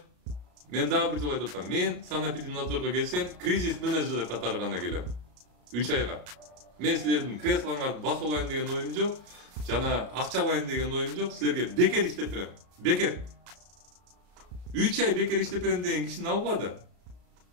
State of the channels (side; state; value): left; late; 33 ms